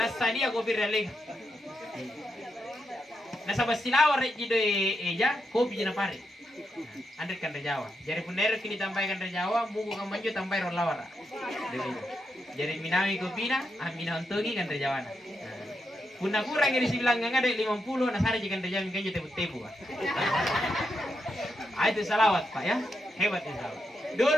tadi aku biralih. Nah sabas silawar rek doi eja kopi jena parik. Anda kan Jawa. Jadi punero kini tambahkan Jawa, mugu kan manju tambah rolawara. Jadi minawi kopi na, minawi togi kan Jawa na. Punna kurang dari sibilang ada 50, nasara jika terjamin kan tebu-tebu. Itu salawat Pak ya, hebat itu salawat.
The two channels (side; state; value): both; normal; correlation 0.84